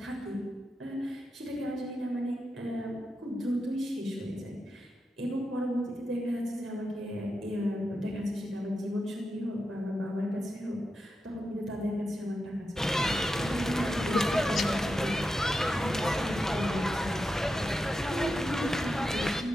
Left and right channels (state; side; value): normal; both; correlation 0.88